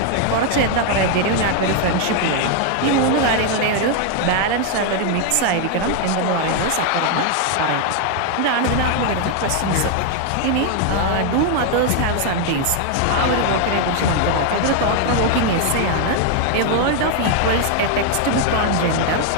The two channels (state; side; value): different; both; correlation 0.00